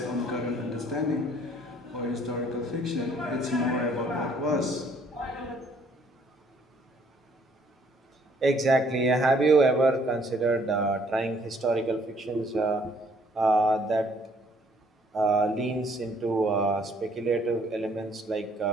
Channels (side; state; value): both; normal; correlation 0.62